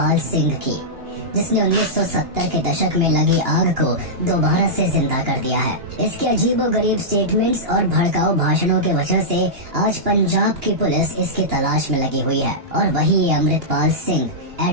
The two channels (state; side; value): late; left; 2.9 ms